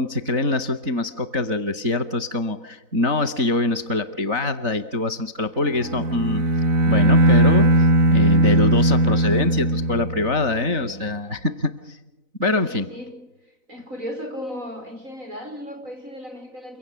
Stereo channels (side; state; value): left; late; 4.0 ms